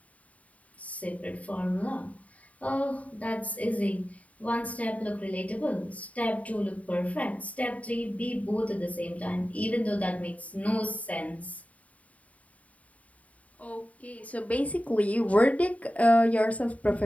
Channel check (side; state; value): right; late; 0.069 ms